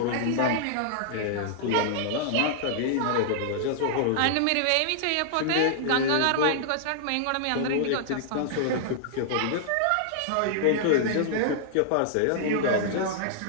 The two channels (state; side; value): different; both; correlation -0.01